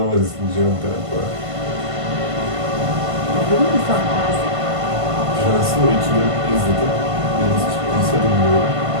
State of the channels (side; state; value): left; late; 1.5 ms